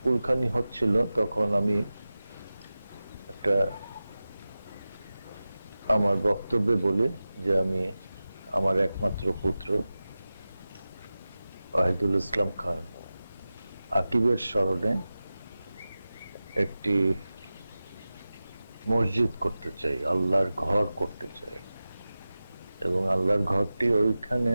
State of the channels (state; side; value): inverted; both; correlation -0.95